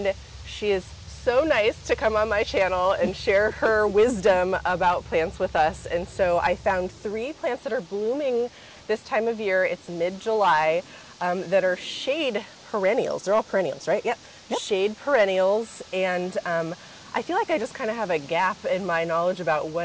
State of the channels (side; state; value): both; identical; correlation 1.00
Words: she is so nice to come on my channel and share her wisdom about plants with us. And so I found 3 plants that are blooming this time of year. It's mid-July, that are shade perennials. They're all perennials, right? Yep. Shade perennials. And I feel like I just kind of have a gap in my knowledge about